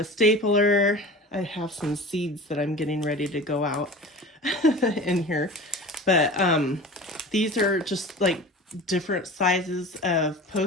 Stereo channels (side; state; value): both; normal; correlation 0.37